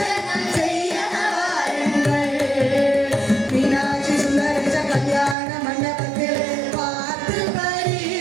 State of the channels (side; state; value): left; drops out; at 5.4 s